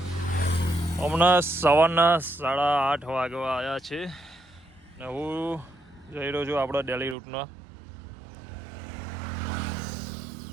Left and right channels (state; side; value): drops out; left; at 7.2 s